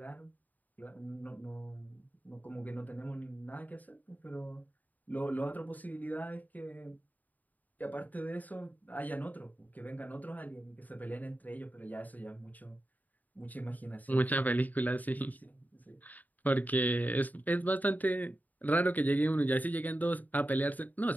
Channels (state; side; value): late; right; 0.081 ms